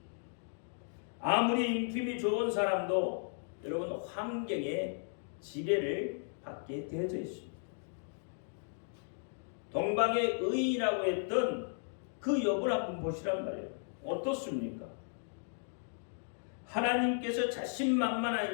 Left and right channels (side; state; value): right; silent; digital silence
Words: 아무리 인품이 좋은 사람도 여러분 환경에 지배를 받게 되어져 있습니다. 동방의 의인이라고 했던 그 욥을 한번 보시란 말이에요. 어떻습니까? 하나님께서